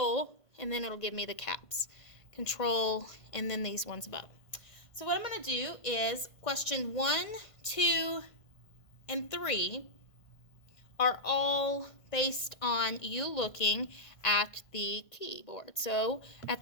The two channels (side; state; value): right; late; 1.5 ms